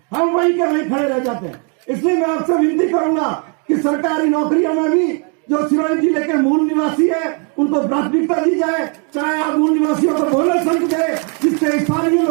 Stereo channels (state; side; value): quieter; left; 37.8 dB